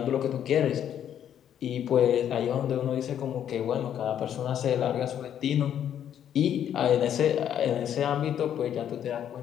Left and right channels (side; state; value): right; quieter; 9.8 dB